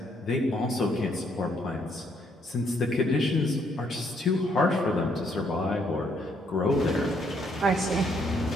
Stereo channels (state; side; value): normal; both; correlation 0.71